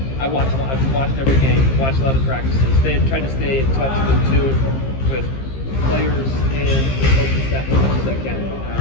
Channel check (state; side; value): late; right; 15 ms